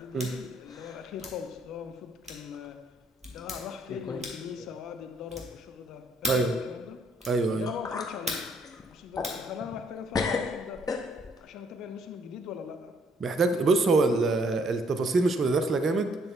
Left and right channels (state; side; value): normal; both; correlation 0.67